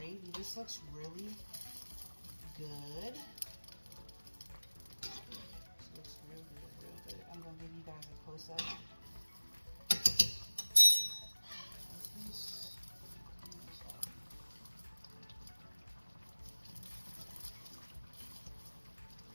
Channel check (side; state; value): both; inverted; correlation -1.00